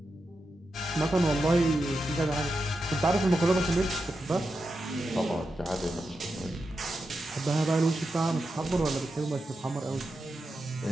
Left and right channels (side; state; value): both; normal; correlation 0.88